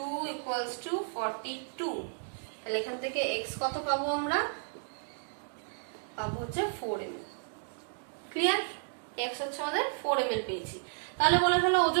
equals to 42। তাহলে এখান থেকে x কত পাবো আমরা? পাবো হচ্ছে 4 ml। ক্লিয়ার? x হচ্ছে আমাদের 4 ml পেয়েছি। তাহলে বলে ফেলো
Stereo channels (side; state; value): left; silent; digital silence